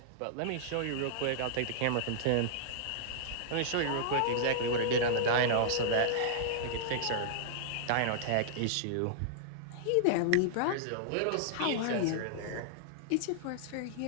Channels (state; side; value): different; both; correlation -0.01